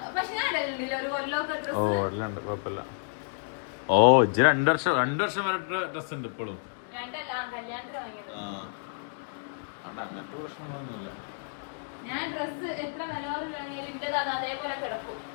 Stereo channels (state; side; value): silent; right; digital silence